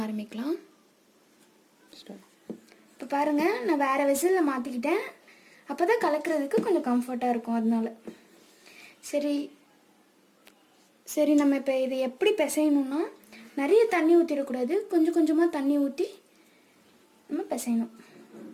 ஆரம்பிக்கலாம். இப்போ பாருங்கள், நான் வேறு வெசலில் மாற்றிக்கிட்டேன். அப்போ தான் கலக்கிறதுக்கு கொஞ்சம் கம்ஃபர்ட்டாக இருக்கும். அதனால சரி நம்ம இப்போ இதை எப்படி பிசையணுன்னா, நிறைய தண்ணி ஊற்றிடக்கூடாது. கொஞ்சம் கொஞ்சமாக தண்ணி ஊற்றி நம்ம பிசையணும்.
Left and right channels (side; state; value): both; identical; correlation 1.00